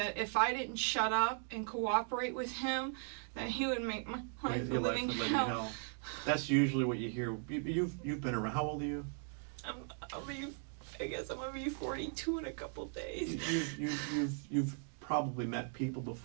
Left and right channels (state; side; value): silent; left; 52 dB below the other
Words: if I didn't shut up and cooperate with him, that he would make my life a Your life living would live in hell. hell. That's usually what you hear. You've been around. How old are you? I guess I'm gonna be 42 in a couple days. You've probably met people